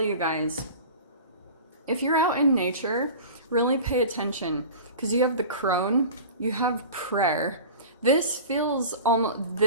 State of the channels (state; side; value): inverted; both; correlation -0.36